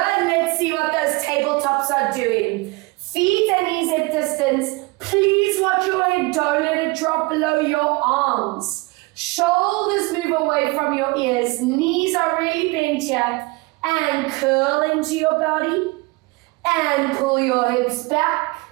see what those tabletops are doing. Feet and knees at distance. Please watch your head, don't let it drop below your arms. Shoulders move away from your ears, knees are really bent here, and curl into your body, and pull your hips back.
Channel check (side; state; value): left; quieter; 24.8 dB